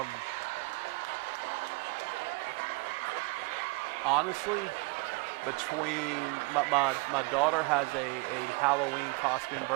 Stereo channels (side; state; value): left; quieter; 27.8 dB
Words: Honestly, between my daughter has a Halloween costume